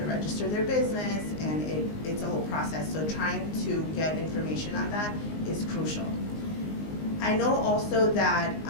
register their business and it's a whole process. So trying to get information on that is crucial. I know also that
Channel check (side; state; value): right; late; 19 ms